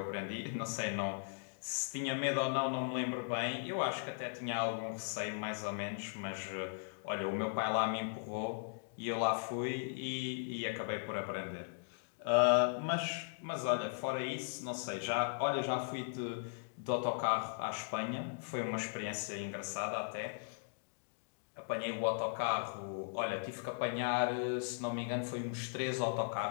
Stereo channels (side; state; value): right; silent; digital silence